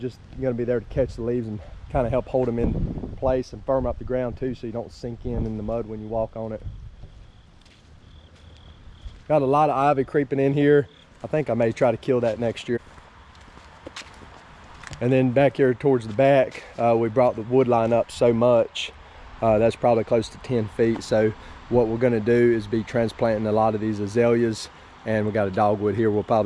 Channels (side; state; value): both; identical; correlation 1.00